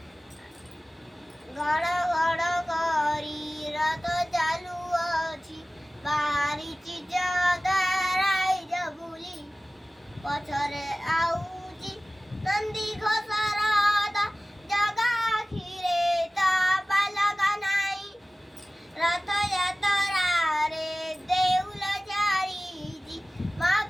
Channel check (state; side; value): normal; both; correlation 0.97